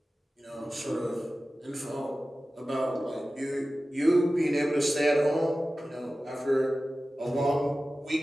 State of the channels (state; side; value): normal; both; correlation 0.95